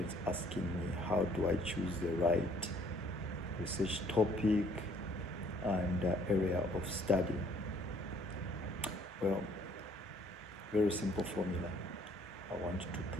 asking me, how do I choose the right research topic and area of study? Well, very simple formula I want to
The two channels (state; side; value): normal; both; correlation 0.61